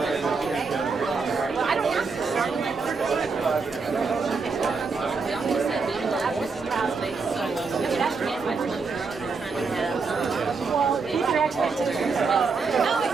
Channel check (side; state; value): left; quieter; 4.6 dB